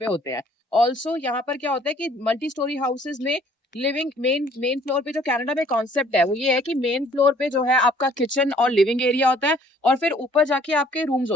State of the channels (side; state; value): both; normal; correlation 0.59